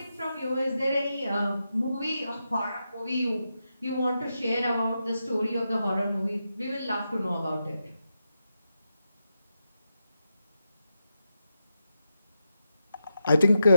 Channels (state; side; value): inverted; both; correlation -0.87